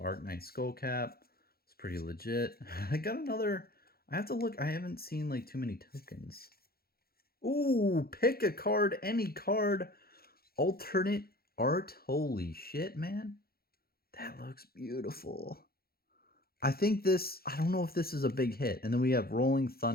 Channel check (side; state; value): right; late; 0.44 ms